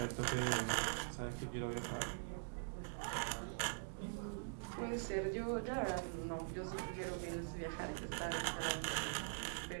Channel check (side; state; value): left; silent; digital silence